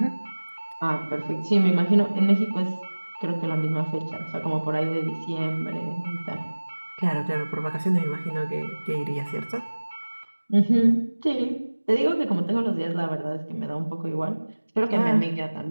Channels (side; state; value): both; inverted; correlation -1.00